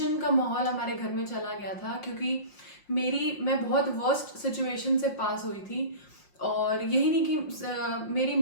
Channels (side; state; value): right; late; 5.6 ms